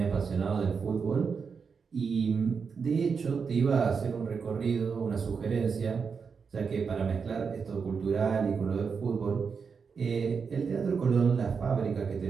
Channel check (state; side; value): quieter; left; 5.7 dB